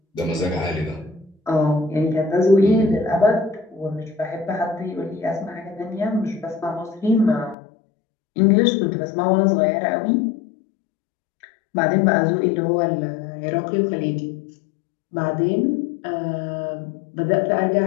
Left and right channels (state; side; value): drops out; right; at 7.6 s